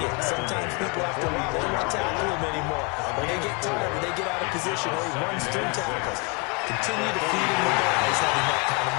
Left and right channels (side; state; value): right; quieter; 30.2 dB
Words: it. Sometimes people after a while, they don't want to tackle him anymore. Or they get tired, or they get out of position, or he runs through tackles. Continue to feed him the ball. He's having that kind of